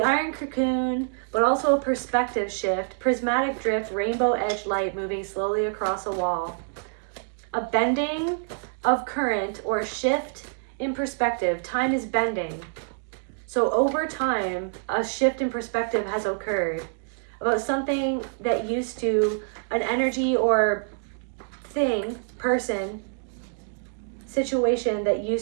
iron cocoon, but also a perspective shift, prismatic drift, rainbow edge light moving slowly across a wall. A bending of current or a shift in perspective. Time is bending. So over time, a shift in perspective has occurred about something that used to, an energy or thing, person, situation that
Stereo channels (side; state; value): left; silent; digital silence